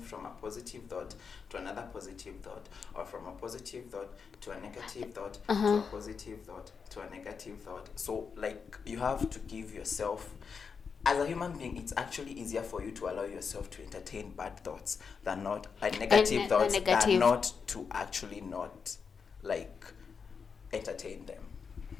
a positive thought to another positive thought, or from a positive thought to a negative thought to a positive thought to a negative thought. So like you have to give yourself, as a human being, it's actually easier for you to allow yourself to entertain bad thoughts than not negative thoughts than not to actually not like entertain them.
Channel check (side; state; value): right; quieter; 5.8 dB